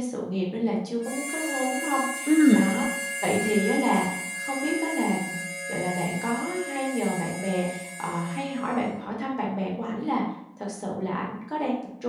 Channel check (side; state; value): both; identical; correlation 1.00